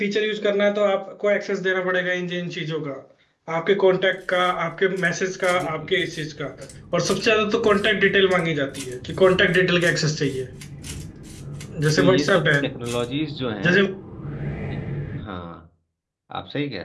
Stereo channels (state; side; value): identical; both; correlation 1.00